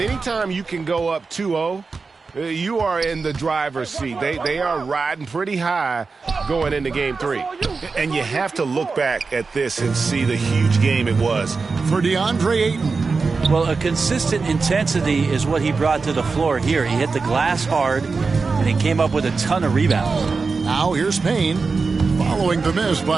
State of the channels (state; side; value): quieter; left; 4.5 dB